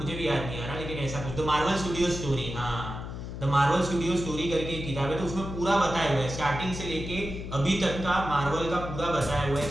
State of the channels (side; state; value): left; noise; hum, 8 dB below the sound